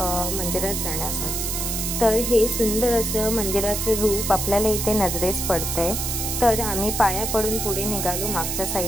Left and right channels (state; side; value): noise; right; hiss, 2 dB below the sound